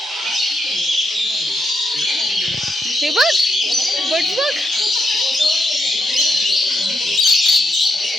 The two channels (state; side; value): normal; both; correlation 0.82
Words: हे बघ बट बघ.